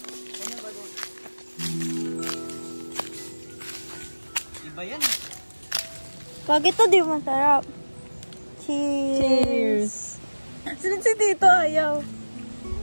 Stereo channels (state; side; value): inverted; both; correlation -1.00